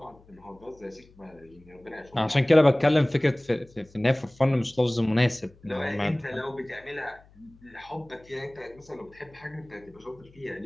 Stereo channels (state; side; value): noise; left; hum, 27 dB below the sound